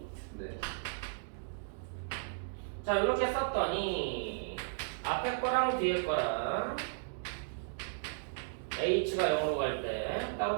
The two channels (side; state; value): left; silent; digital silence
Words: 네. 자, 이렇게 썼더니 앞에 거랑 뒤에 거랑 h가 0으로 갈 때